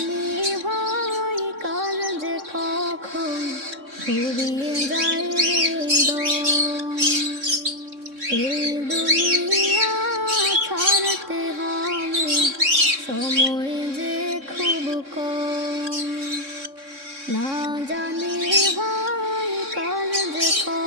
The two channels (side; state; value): left; late; 3.6 ms